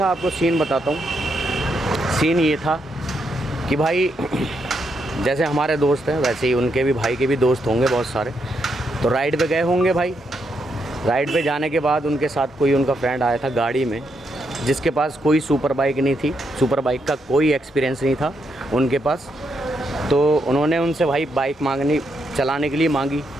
आपको सीन बताता हूँ। सीन ये था कि भाई जैसे हमारे दोस्त हैं वैसे ही उनके भी भाई के भी दोस्त होंगे बहुत सारे। तो राइड पे गए होंगे भाई। राइड पे जाने के बाद उनके साथ कोई उनका फ्रेंड आया था गाड़ी में, जिसके पास कोई सुपर बाइक नहीं थी, सुपर बाइक का कोई एक्सपीरियंस नहीं था उनके पास। तो उन्होंने उनसे भाई बाइक मांगनी चलाने के लिए मांगी,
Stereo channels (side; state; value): both; normal; correlation 0.80